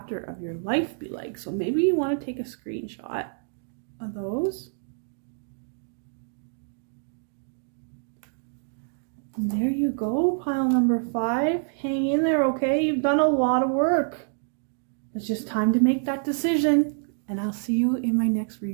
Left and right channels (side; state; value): left; silent; 60 dB below the other